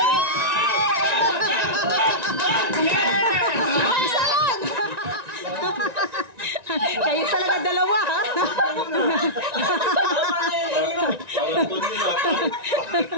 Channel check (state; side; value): late; left; 1.9 ms